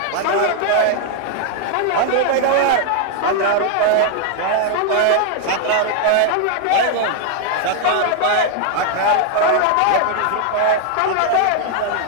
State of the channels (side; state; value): both; different; correlation 0.00